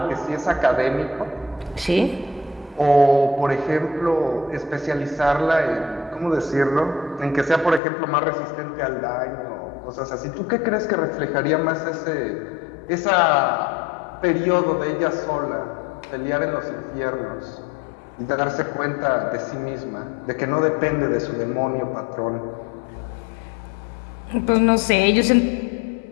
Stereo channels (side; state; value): right; drops out; at 7.8 s